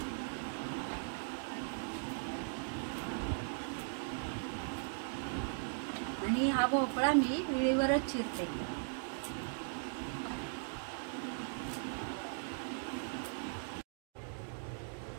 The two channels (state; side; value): silent; left; digital silence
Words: आणि हा भोपळा मी विळीवरच चिरते।